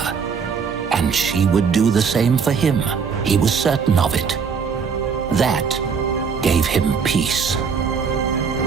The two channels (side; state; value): left; quieter; 6.0 dB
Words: And she would do the same for him. He was certain of it. That gave him peace.